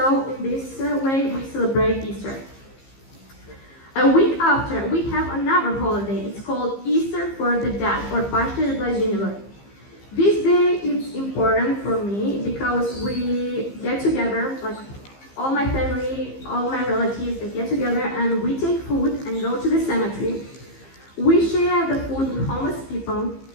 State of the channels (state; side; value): late; right; 15 ms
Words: in this way we celebrate Easter. A week after, we have another holiday. It's called Easter for the Dead, or Paște de Blajinilor. This day is important for me because we get together, like all my family, all my relatives, they get together and we take food and go to the cemetery. We share the food with homeless people.